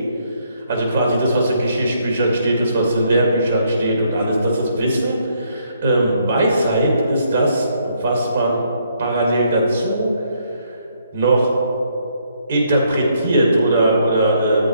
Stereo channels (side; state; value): both; inverted; correlation -0.71